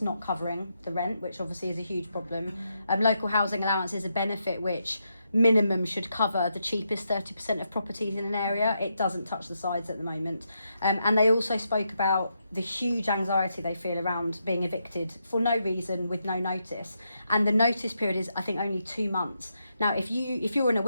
covering the rent, which obviously is a huge problem. Local housing allowance is a benefit which minimum should cover the cheapest 30% of properties in an area. It doesn't touch the sides at the moment. And they also spoke about the huge anxiety they feel around being evicted for no reason with no notice. And the notice period is, I think, only 2 months. Now, if you're in a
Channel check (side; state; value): both; inverted; correlation -0.82